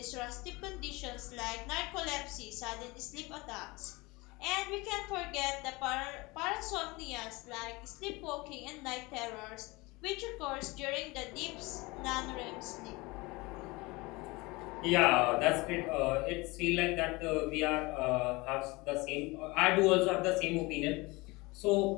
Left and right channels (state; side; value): quieter; right; 23.6 dB